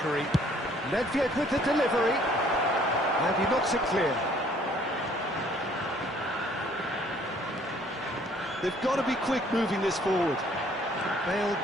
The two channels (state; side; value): normal; both; correlation 0.60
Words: Nedved with the delivery. And he knocks it clear. They've got to be quick moving this forward. Bale